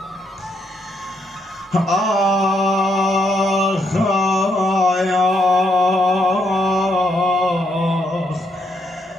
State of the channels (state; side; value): normal; both; correlation 0.76